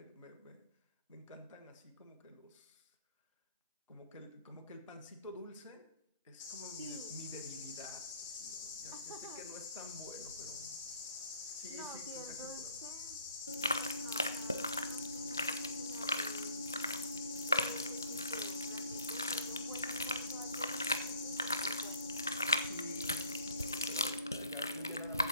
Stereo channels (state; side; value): inverted; both; correlation -0.58